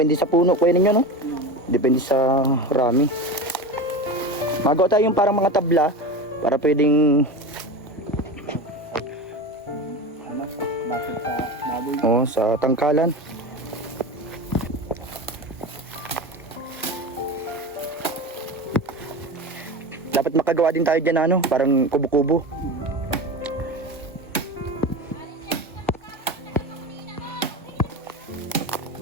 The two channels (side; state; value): both; normal; correlation 0.27